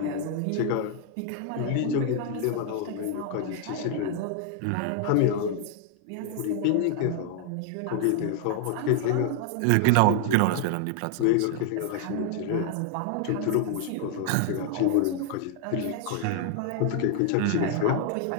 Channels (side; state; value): both; different; correlation 0.00